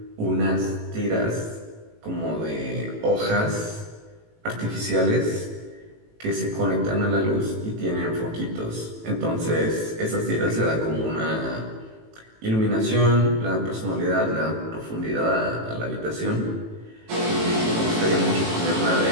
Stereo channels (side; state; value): left; late; 18 ms